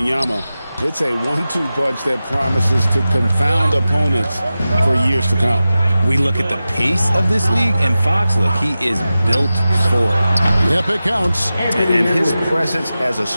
It's a 1-2 punch that promises to confound opponents for years to come. We look at the pace of this league, and Fox, look, he is built for it. Yep, it counts. And his presence as a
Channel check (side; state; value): both; inverted; correlation -0.94